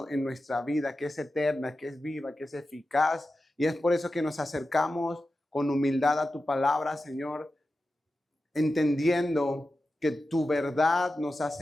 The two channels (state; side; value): normal; both; correlation 0.92